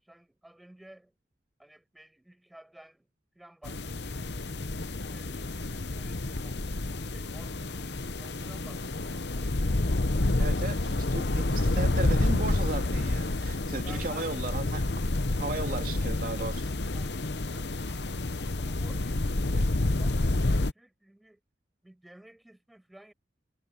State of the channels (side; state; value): both; normal; correlation 0.77